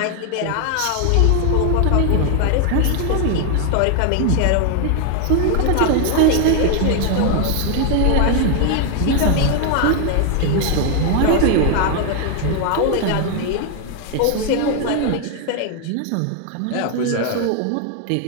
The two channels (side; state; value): both; different; correlation 0.01